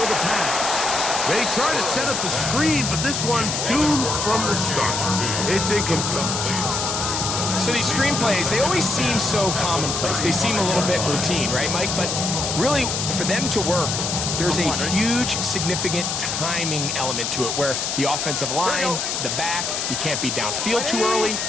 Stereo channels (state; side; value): noise; left; hiss, 1 dB below the sound